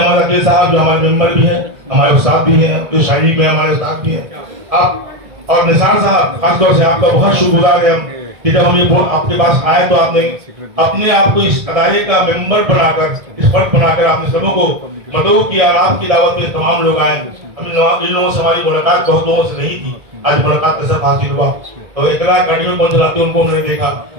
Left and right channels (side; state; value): left; late; 1.7 ms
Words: साहब जो हमारे मेंबर भी हैं, हमारे उस्ताद भी हैं, जो शायरी में हमारे उस्ताद भी हैं, आप और निसार साहब खासतौर से आपका बहुत शुक्रगुजार है हम कि जब हम ये आपके पास आए तो आपने अपने आप को इस अदारे का मेंबर बनाकर, इस फर्क बनाकर आपने सबों को मदऊ किया। आपकी दावत में तमाम लोग आए। इन लोगों से हमारी मुलाकात बहुत लोगों से नहीं थी, आज मुलाकात का सब हासिल हुआ। तो इतना गाड़ियों को चलाते उनको हमने देखा